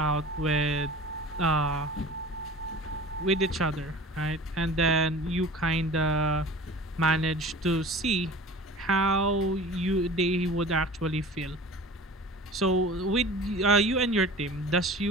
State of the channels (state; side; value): normal; both; correlation 0.40